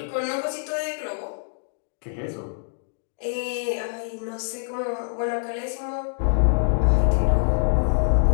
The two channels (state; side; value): silent; right; digital silence